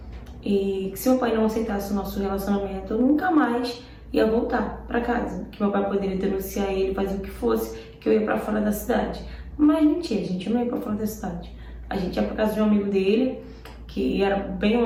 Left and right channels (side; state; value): both; identical; correlation 1.00